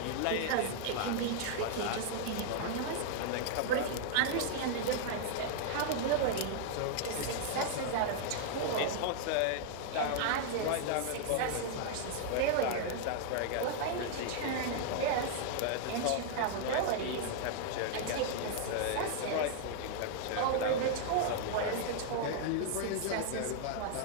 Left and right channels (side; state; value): both; different; correlation -0.01